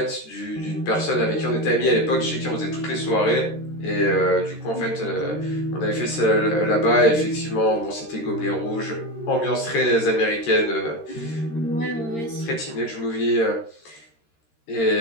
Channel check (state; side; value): late; right; 13 ms